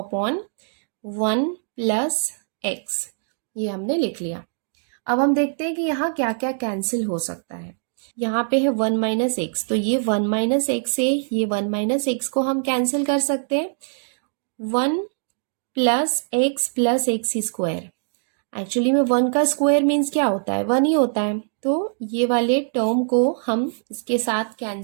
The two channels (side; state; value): left; silent; digital silence